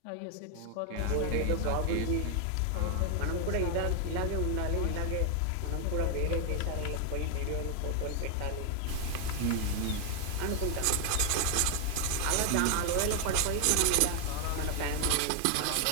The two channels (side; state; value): both; different; correlation 0.00